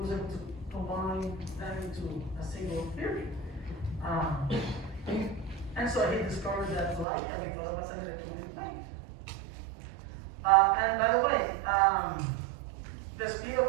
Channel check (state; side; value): drops out; left; at 7.1 s